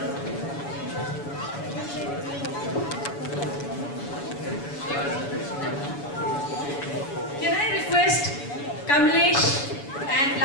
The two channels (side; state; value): right; late; 7.0 ms